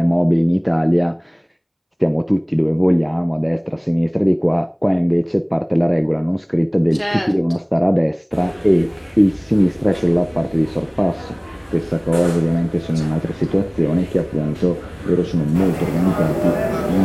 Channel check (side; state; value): both; identical; correlation 1.00